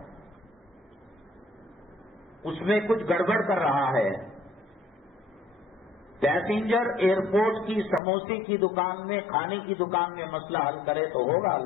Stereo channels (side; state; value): right; drops out; at 8.0 s